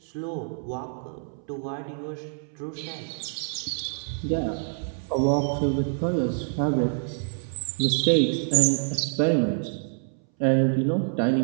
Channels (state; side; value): silent; left; 61 dB below the other